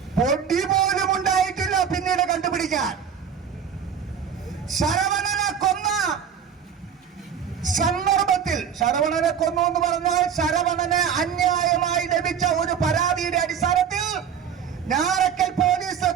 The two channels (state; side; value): quieter; left; 7.7 dB